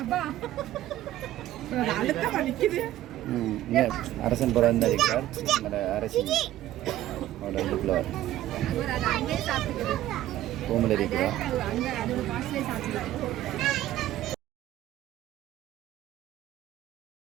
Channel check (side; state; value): left; quieter; 13.9 dB